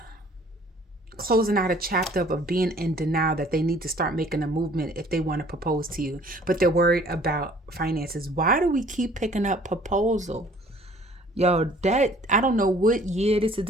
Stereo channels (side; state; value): both; normal; correlation 0.55